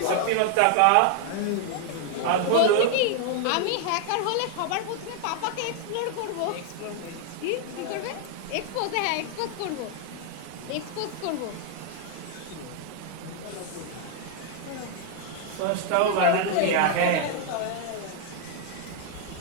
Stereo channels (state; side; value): different; both; correlation 0.00